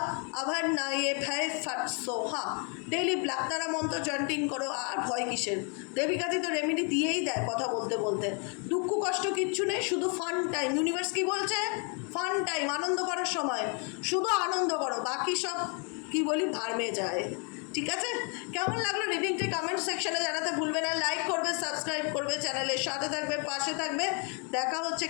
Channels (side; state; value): right; quieter; 37.1 dB